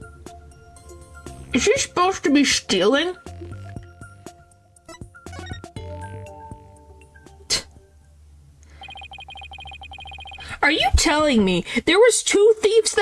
Is she supposed to be stealing? Are you telling me there was 2 thieves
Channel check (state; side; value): identical; both; correlation 1.00